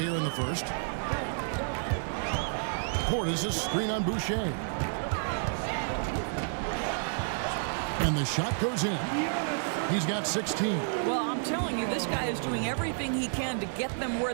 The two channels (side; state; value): left; silent; 58 dB below the other